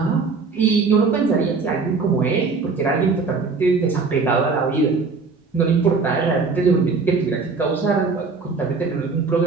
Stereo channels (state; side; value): quieter; left; 4.5 dB